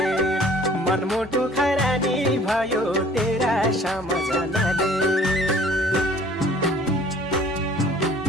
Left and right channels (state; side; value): normal; both; correlation 0.53